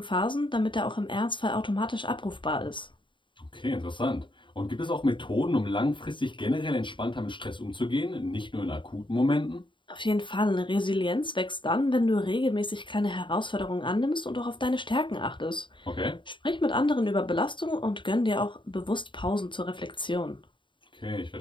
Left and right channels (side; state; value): right; late; 0.23 ms